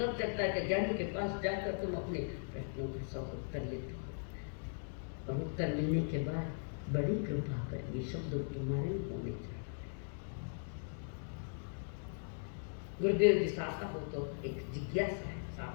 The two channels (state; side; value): silent; right; digital silence